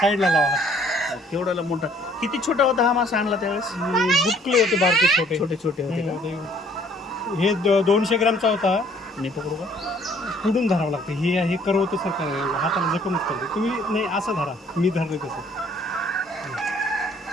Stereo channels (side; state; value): both; normal; correlation 0.60